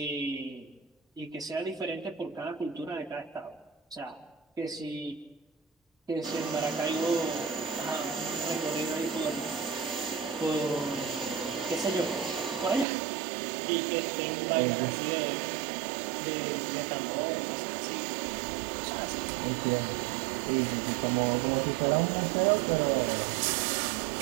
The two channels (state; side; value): drops out; left; at 12.9 s